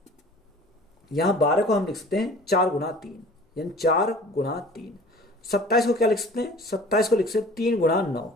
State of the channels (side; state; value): both; normal; correlation 0.45